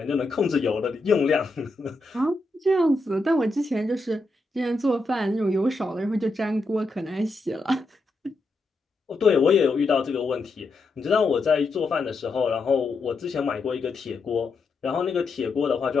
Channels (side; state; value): right; quieter; 3.2 dB